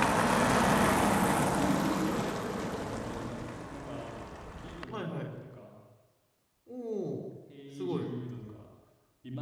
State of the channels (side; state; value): both; identical; correlation 1.00